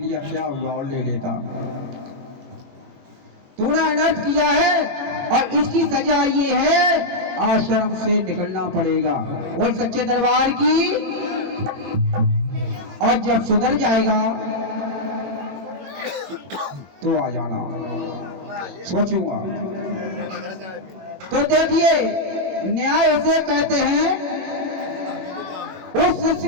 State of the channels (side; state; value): left; late; 21 ms